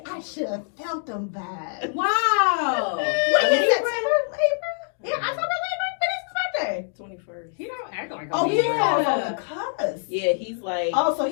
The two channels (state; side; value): silent; right; 62 dB below the other